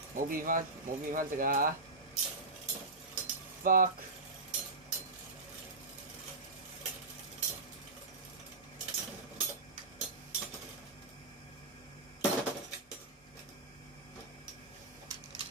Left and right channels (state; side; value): quieter; left; 3.2 dB